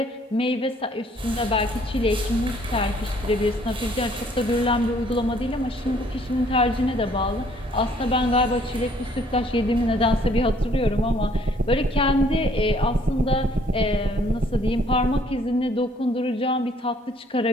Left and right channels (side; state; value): both; normal; correlation 0.62